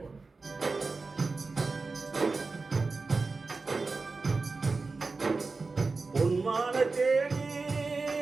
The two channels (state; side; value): quieter; left; 4.0 dB